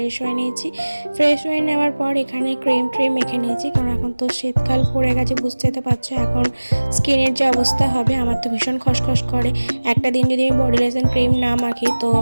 হয়ে নিয়েছি। ফ্রেশ হয়ে নেওয়ার পর এখানে ক্রিম মেখে নিয়েছি, কারণ এখন তো শীতকাল পড়ে গেছে, বুঝতে তো পারছো এখন স্কিনের যে অবস্থা হবে। আমার তো ভীষণ খসখস করে, একটা দিন যদি আমি বডি লোশন ক্রিম না মাখি তো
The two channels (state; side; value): inverted; both; correlation -1.00